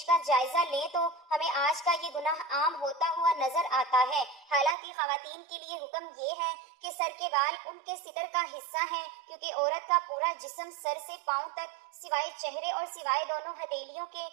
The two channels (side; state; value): left; drops out; at 4.8 s